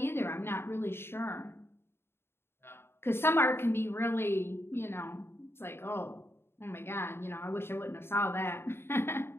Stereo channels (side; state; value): right; late; 0.11 ms